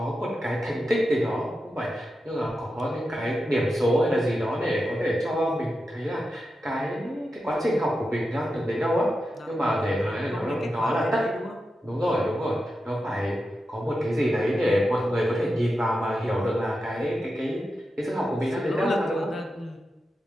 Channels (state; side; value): normal; both; correlation 0.89